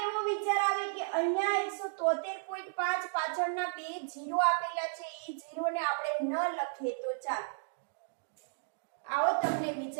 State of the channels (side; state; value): left; silent; digital silence